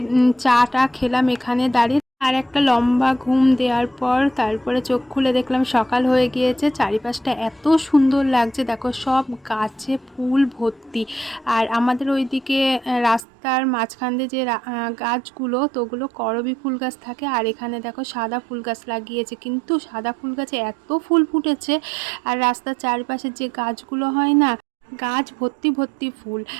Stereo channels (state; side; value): drops out; left; at 13.2 s